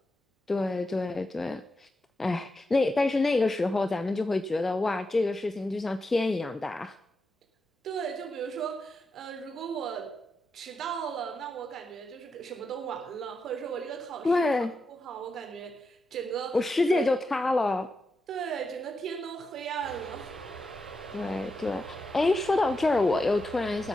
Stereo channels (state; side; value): normal; both; correlation 0.87